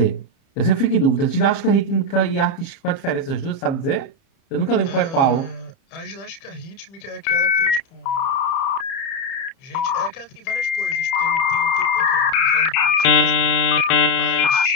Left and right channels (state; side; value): late; right; 30 ms